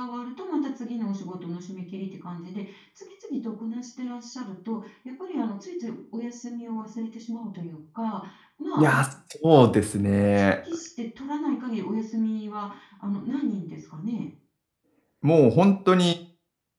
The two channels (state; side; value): identical; both; correlation 1.00